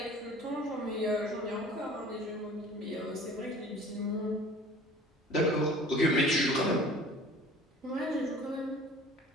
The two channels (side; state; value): both; normal; correlation 0.46